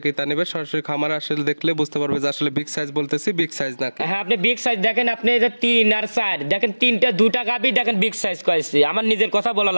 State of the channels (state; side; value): inverted; both; correlation -1.00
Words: কি তা নিবে সরাসরি খামারে আসলে দেখলে বুঝতে পারবে যে আসলে বিগ সাইজ বলতেছি বিগ সাইজ নাকি। হ্যাঁ আপনি বিগ সাইজ দেখেন, আপনি এই যে 3 আর 4 দেখেন, 2টা গাবি দেখেন বিগ সাইজ কয়েছে। আমার নিজের কথা বলা